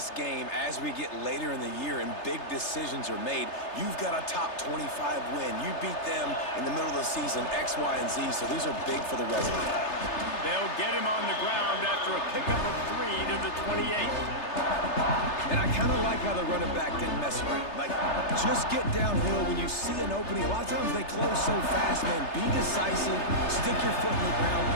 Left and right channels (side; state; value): right; late; 3.3 ms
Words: game as we get later in the year and big decisions are made. You've got a top 25 win. You beat them in the middle of the season, X, Y, and Z, so these are big for the resume. They'll get him on the ground after a pickup of 3 to the 28. And I kind of like how the running back didn't mess around. Like, just get downhill when you see an opening. A lot of times they close so fast, man. Be decisive, stick your foot in the ground,